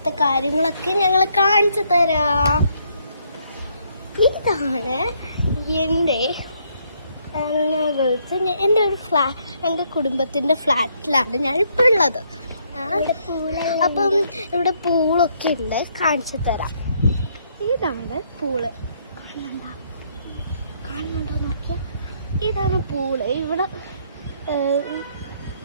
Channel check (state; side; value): inverted; both; correlation -0.70